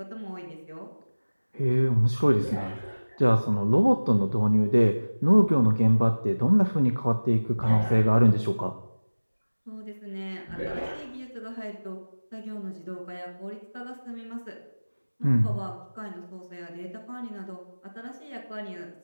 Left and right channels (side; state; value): both; inverted; correlation -1.00